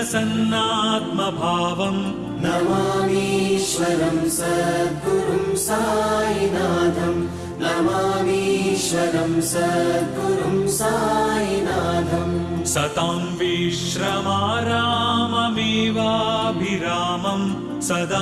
नमामीश्वरं सद्गुरुं साईनाथम् नमामीश्वरं सद्गुरुं साईनाथम् सतां विश्रमाराममेवाभिरामं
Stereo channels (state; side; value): identical; both; correlation 1.00